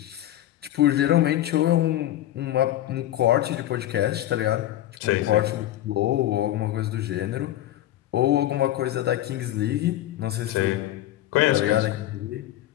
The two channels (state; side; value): quieter; right; 13.5 dB